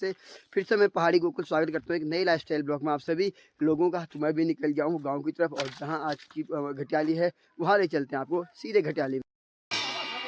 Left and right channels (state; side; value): identical; both; correlation 1.00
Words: फिर से मैं पहाड़ी गोकुल स्वागत करता हूँ एक नई लाइफ स्टाइल ब्लॉग में आप सभी लोगों का। तो मैं भी निकल गया हूँ गाँव की तरफ, और जहाँ आज की घटियाली है वहाँ ले चलते हैं आपको सीधे घटियाली।